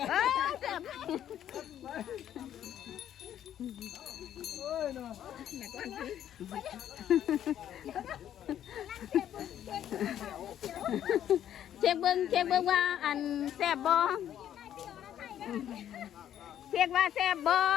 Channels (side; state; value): right; quieter; 10.7 dB